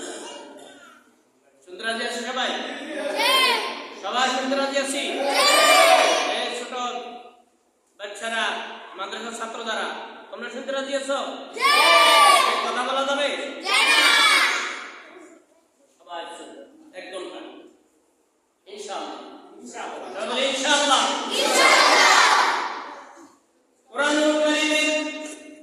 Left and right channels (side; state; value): both; identical; correlation 1.00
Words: শুনতে রাজি আছি সবাই? সবাই শুনতে রাজি আছি? ছোট বাচ্চারা, মাদ্রাসার ছাত্র দ্বারা তোমরা শুনতে রাজি আছো? কথা বলা যাবে? সবাই একদম ইনশাআল্লাহ ইনশাআল্লাহ। কোরআনুল কারীমের